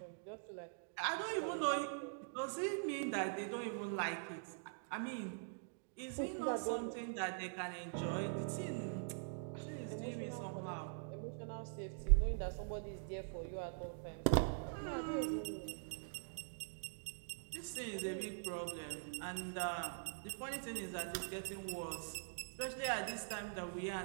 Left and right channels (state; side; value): silent; left; digital silence